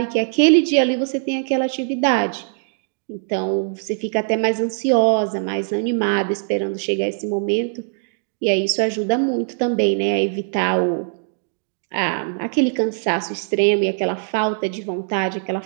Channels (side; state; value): left; silent; digital silence